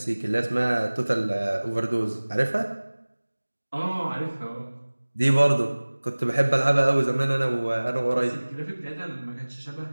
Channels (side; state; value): both; inverted; correlation -1.00